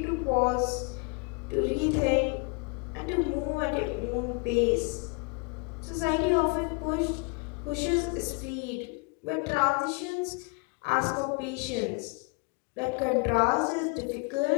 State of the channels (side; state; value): right; quieter; 32.5 dB